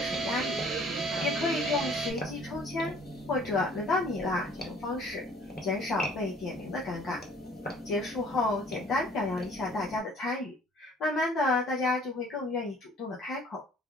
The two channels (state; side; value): normal; both; correlation 0.54